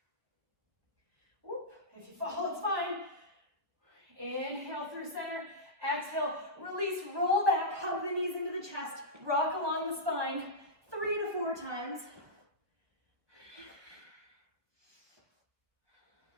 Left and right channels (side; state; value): left; late; 1.3 ms